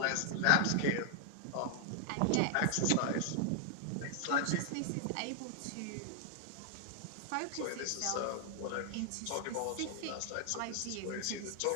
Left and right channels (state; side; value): different; both; correlation -0.01